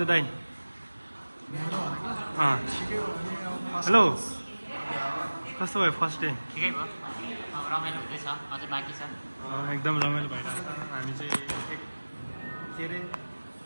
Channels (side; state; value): both; inverted; correlation -1.00